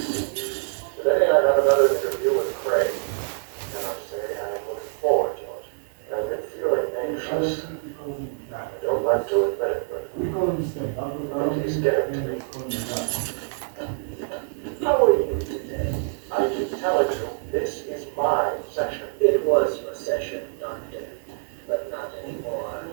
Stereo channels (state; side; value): silent; left; 57 dB below the other